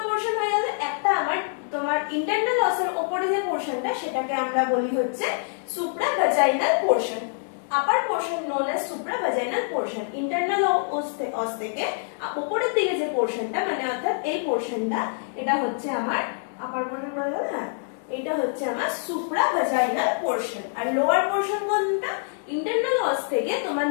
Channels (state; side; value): silent; right; digital silence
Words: পোরশন হয়ে গেল, একটা আমার তোমার ইন্টারনাল অসের উপরে যে পোরশনটা সেটাকে আমরা বলি হচ্ছে supravaginal portion, upper portion known as supravaginal portion. Internal os থেকে উপরের দিকে যে পোরশনটা মানে অর্থাৎ এই পোরশনটা এটা হচ্ছে আমার আপার পোরশন বলা যাবে না, এটা হচ্ছে আমার সুপ্রাভাজাইনাল পোরশন। আর লোয়ার পোরশন কোনটা? ইন্টারনাল অস থেকে তোমার